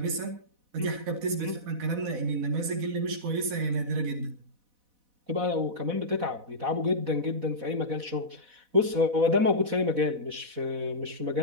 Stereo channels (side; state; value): left; late; 4.1 ms